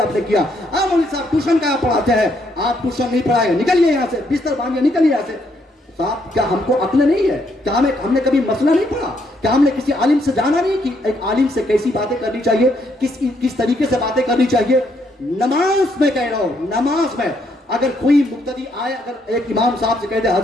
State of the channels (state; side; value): normal; both; correlation 0.73